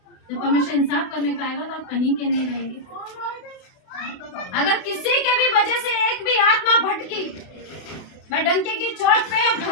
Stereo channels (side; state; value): right; late; 32 ms